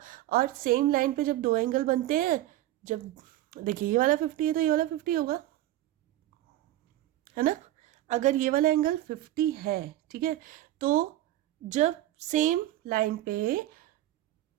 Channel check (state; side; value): quieter; left; 14.6 dB